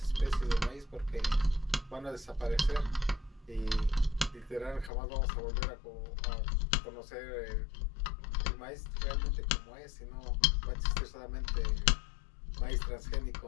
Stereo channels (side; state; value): right; drops out; at 4.9 s